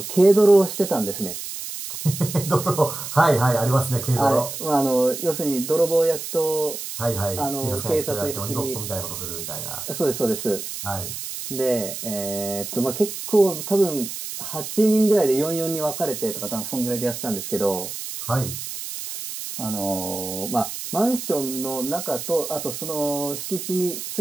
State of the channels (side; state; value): right; noise; hiss, 7 dB below the sound